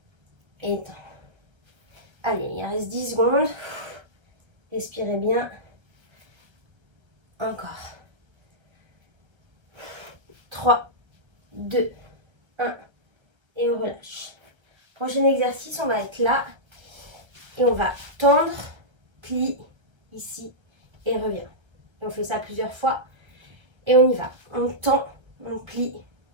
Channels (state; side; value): late; left; 1.3 ms